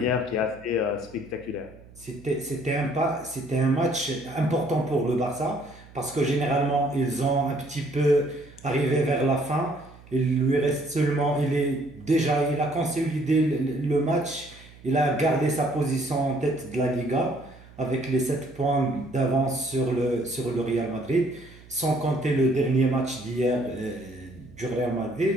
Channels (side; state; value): right; noise; hum, 22 dB below the sound